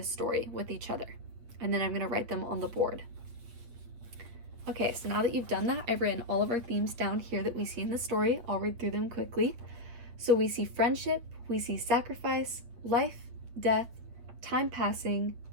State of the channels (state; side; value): late; left; 8.6 ms